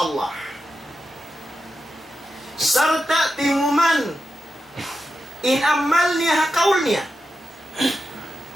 Sarta timuman, inamal niya hakaul niya.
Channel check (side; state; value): both; normal; correlation 0.89